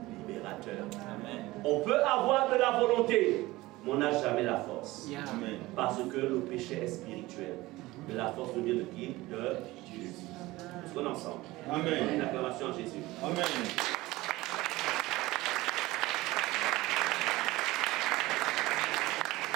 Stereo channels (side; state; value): left; quieter; 19.2 dB